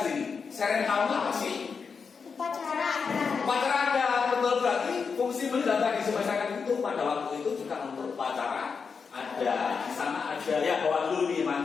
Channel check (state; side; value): quieter; right; 5.6 dB